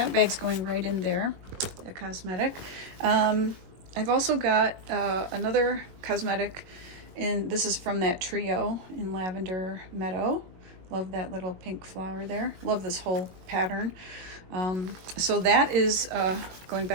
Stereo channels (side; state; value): left; late; 22 ms